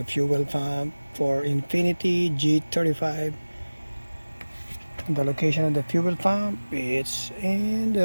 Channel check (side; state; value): both; inverted; correlation -1.00